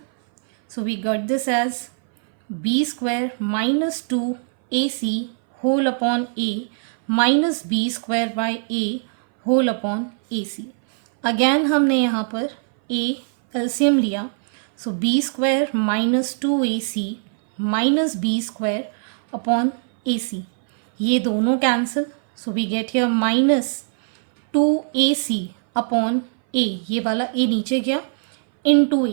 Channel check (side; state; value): left; silent; 61 dB below the other